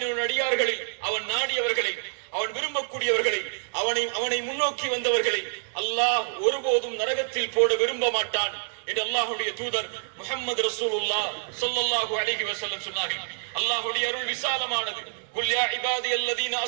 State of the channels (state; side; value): silent; left; 60 dB below the other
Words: அடியார்களில் அவன் நாடியவர்களை, அவன் விரும்பக்கூடியவர்களை, அவனை முன்னோக்கி வந்தவர்களை அல்லாஹ் ஒருபோதும் நரகத்தில் போட விரும்ப மாட்டான் என்று அல்லாஹ்வுடைய தூதர் முஹம்மது ரசூலுல்லாஹ் ஸல்லல்லாஹு அலைஹி வஸல்லம் சொன்னார்கள். அல்லாஹ்வுடைய அருள் விசாலமானது. குல் யா இபாதியல்லதீன